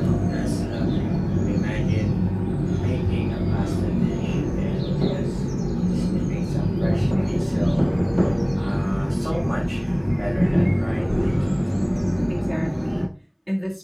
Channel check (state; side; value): identical; both; correlation 1.00